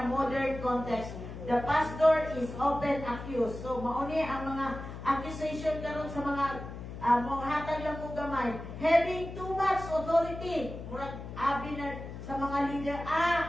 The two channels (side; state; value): left; noise; hum, 10 dB below the sound